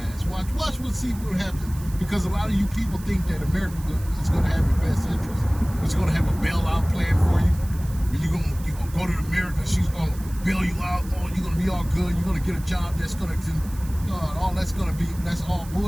Watch see what happens. Because a lot of you people think that America is going to have your best interest. It's going to have a bailout plan for you. You're gonna go to America. She's going to bail you out. Oh, you're going to be all good. You're going to get a job that's going to, that's all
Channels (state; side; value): noise; right; hiss, 19 dB below the sound